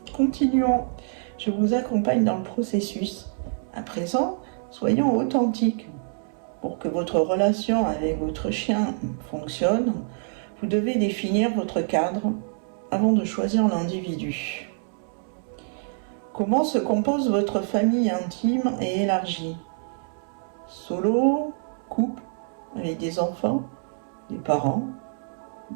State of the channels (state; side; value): silent; left; 61 dB below the other